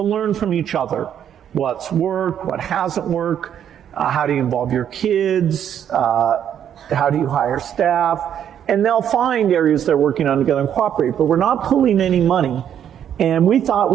learn from each other. What's worked, what hasn't worked, how do you involve your kids, how do you hire staff, and they'll find areas they're working on together and cooperate, but we're not pulling any money. And we thought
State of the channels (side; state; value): left; quieter; 9.5 dB